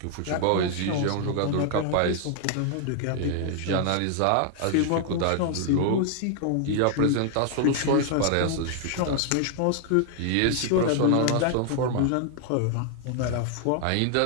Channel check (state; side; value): different; both; correlation 0.00